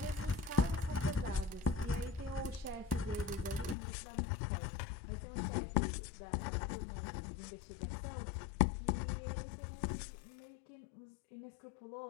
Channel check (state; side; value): drops out; right; at 3.8 s